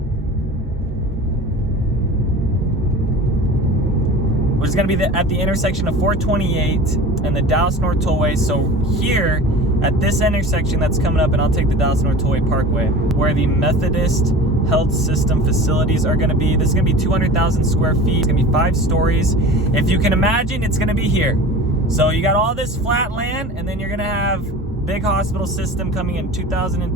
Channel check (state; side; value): normal; both; correlation 0.37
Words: Which is gonna be at the intersection of 428 and the Dallas North Tollway. So here, at this intersection that's coming up, and I'll take the Dallas North Tollway Parkway, where the Methodist health system facilities are going to be. This is going to be 200,000 square feet. It's going to be 5 stories. If you can imagine, it's going to be here. So you got all this flat land, and then you're going to have big hospital system coming in